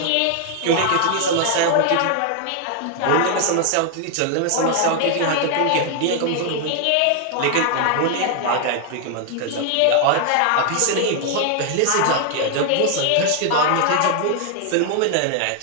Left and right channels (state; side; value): different; both; correlation 0.00